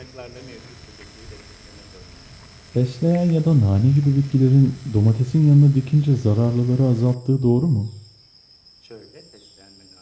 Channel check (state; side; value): identical; both; correlation 1.00